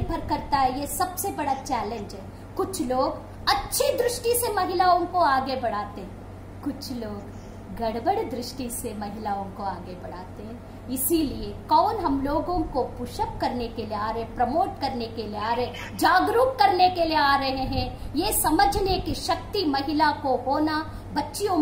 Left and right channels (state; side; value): identical; both; correlation 1.00